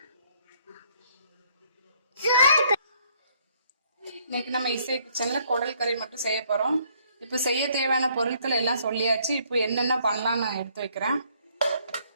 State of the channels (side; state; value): both; inverted; correlation -0.65